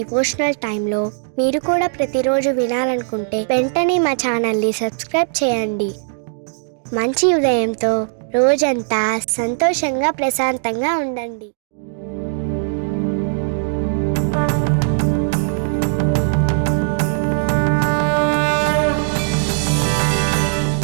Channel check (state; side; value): silent; left; digital silence